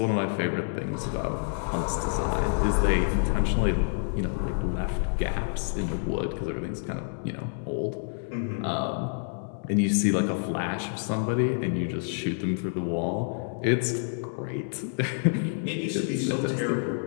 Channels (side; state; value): right; silent; digital silence